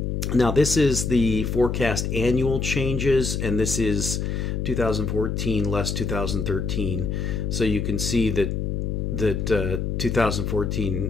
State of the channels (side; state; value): left; noise; hum, 1 dB below the sound